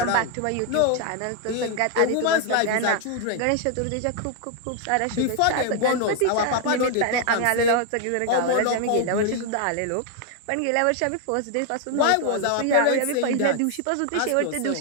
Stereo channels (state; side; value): different; both; correlation 0.00